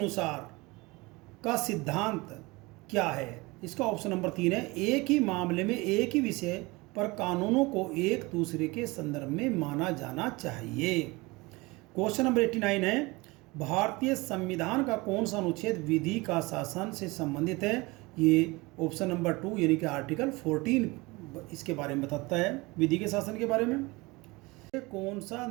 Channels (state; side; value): quieter; left; 23.7 dB